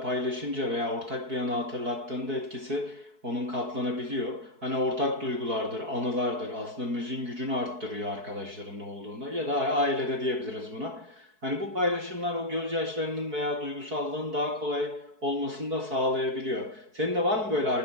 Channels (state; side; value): late; left; 4.6 ms